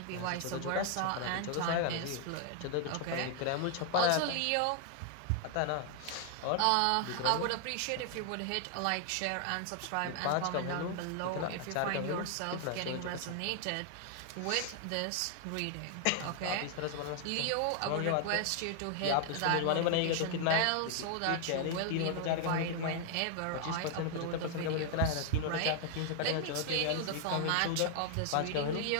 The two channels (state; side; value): different; both; correlation 0.00